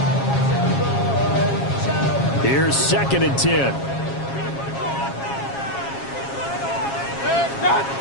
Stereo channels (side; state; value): right; late; 7.3 ms